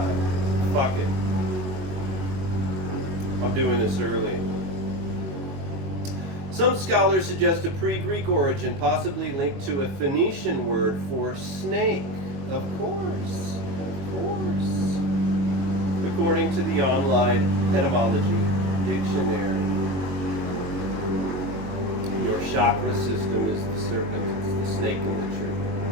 Fuck it. I'm doing this early. Some scholars suggest a pre-Greek origin, possibly linked to a Phoenician word for snake. Of course. According to the online etymology dictionary. chakra system is the serpent, it's the snake in the tree.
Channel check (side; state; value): left; late; 22 ms